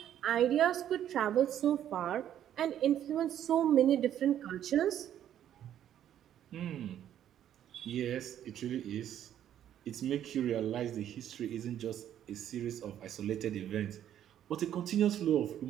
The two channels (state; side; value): quieter; left; 10.7 dB